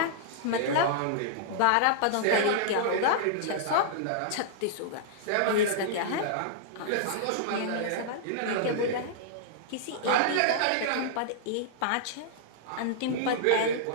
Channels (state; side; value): different; both; correlation -0.02